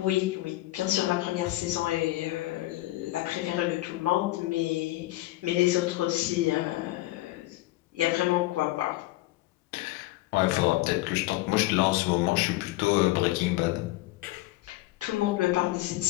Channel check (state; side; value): quieter; right; 17.9 dB